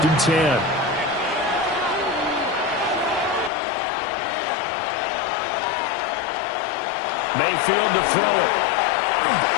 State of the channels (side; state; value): right; drops out; at 3.5 s